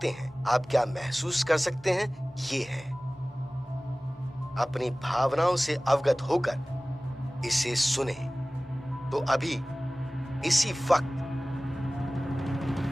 हैं, आप क्या महसूस कर सकते हैं, ये है अपनी भावनाओं से अवगत होकर इसे सुने। तो अभी इसी वक्त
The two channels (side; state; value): both; normal; correlation 0.98